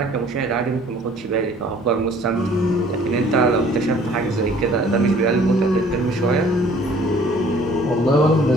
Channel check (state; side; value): normal; both; correlation 0.55